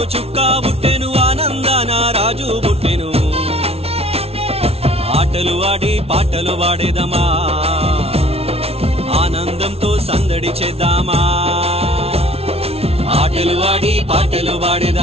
చుక్క పుట్టెను, ఆనందాన రాజు పుట్టెను. ఆటలు ఆడి పాటలు పాడేదమా, ఆనందంతో సందడి చేద్దామా. ఆటలు ఆడి పాటలు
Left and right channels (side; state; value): left; late; 0.30 ms